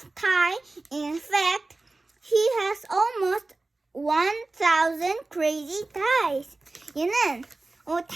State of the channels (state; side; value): quieter; left; 3.2 dB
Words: Ty. In fact, he has almost 1,000 crazy ties. 얘는